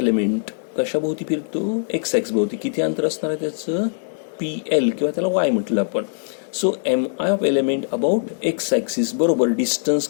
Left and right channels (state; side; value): silent; right; digital silence